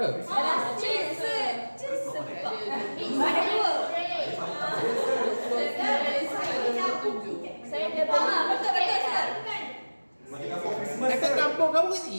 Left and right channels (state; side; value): inverted; both; correlation -1.00